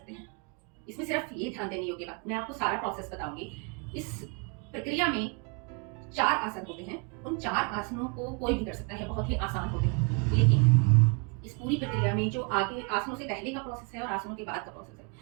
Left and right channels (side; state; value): left; quieter; 34.2 dB